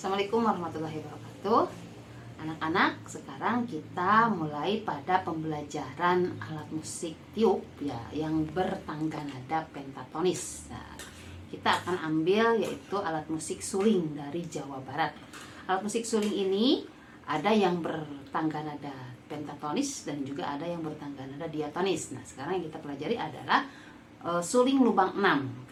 Assalamualaikum warahmatullahi wabarakatuh. Anak-anak, sekarang kita mulai pada pembelajaran alat musik tiup ya yang bertangga nada pentatonis. Nah, kita akan ambil yaitu alat musik suling dari Jawa Barat. Alat musik suling ini ada yang bertangga nada pentatonis dan juga ada yang bertangga nada diatonis. Nah, sekarang yang kita pelajari adalah suling lubang 6.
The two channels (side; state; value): both; identical; correlation 1.00